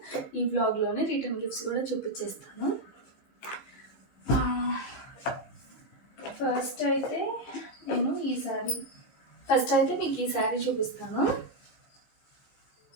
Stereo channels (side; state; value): right; late; 15 ms